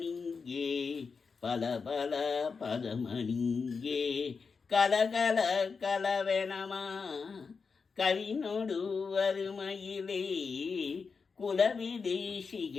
பல பல பதமணிங்கே கலகல கலவெனமா கவினோடு வருமயிலே குலவிதை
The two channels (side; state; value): right; quieter; 5.1 dB